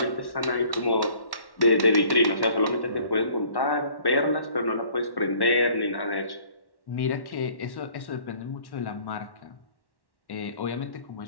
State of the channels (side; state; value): right; late; 1.1 ms